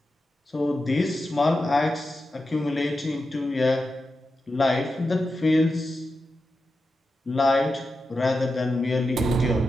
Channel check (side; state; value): both; normal; correlation 0.90